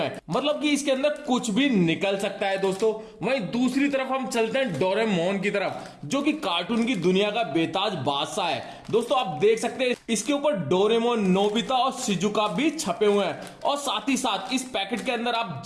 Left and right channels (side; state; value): both; identical; correlation 1.00